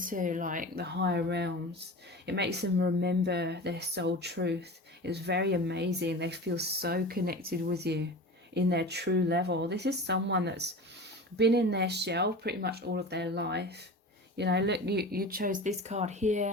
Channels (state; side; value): normal; both; correlation 0.33